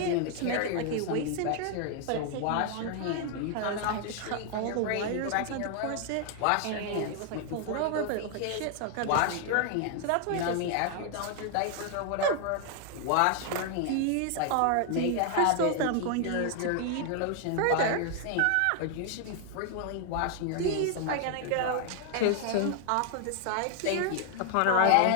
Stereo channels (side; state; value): both; different; correlation 0.00